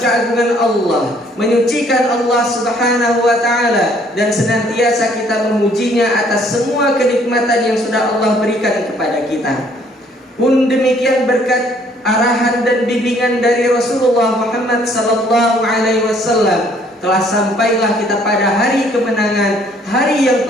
keagungan Allah, menyucikan Allah Subhanahu wa taala, dan senantiasa kita memujinya atas semua kenikmatan yang sudah Allah berikan kepada kita. Pun demikian berkat arahan dan bimbingan dari Rasulullah Muhammad sallallahu alaihi wasallam, telah sampailah kita pada hari kemenangan, hari yang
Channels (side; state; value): both; normal; correlation 0.62